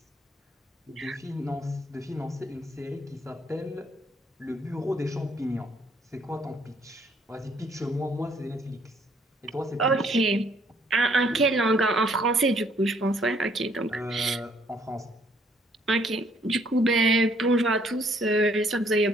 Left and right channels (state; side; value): normal; both; correlation 0.65